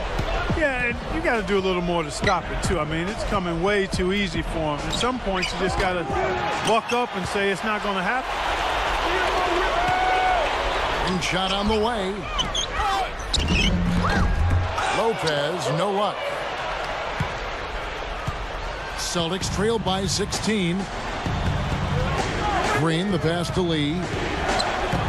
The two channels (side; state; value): both; identical; correlation 1.00